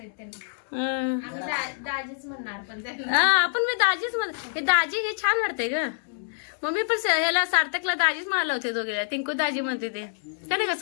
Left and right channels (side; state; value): right; silent; digital silence